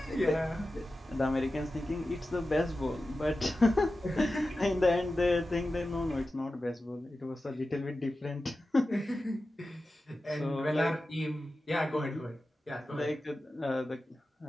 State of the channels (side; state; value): both; normal; correlation 0.93